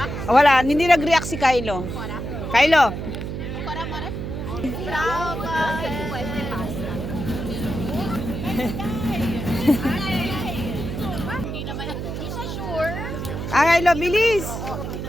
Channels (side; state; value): right; noise; hum, 5 dB below the sound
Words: Wala, hindi nag-react si Kylo. Kylo. Kylo, bilis.